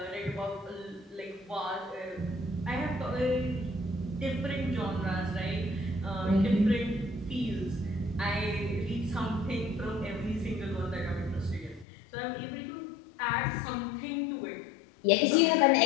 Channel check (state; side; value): drops out; right; at 11.9 s